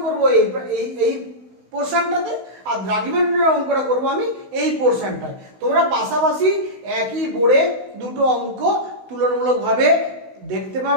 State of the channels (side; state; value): left; late; 16 ms